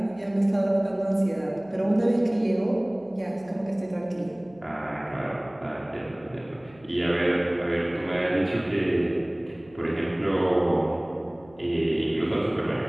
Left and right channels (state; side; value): noise; left; hum, 26 dB below the sound